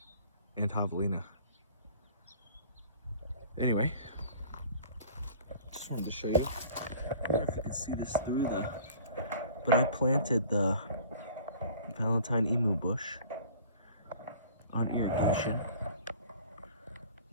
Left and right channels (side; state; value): both; inverted; correlation -0.47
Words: and Javelina. Anyway, just wanted to show you. I don't know if you can see this through but I planted the Valentine emu bush on irrigation.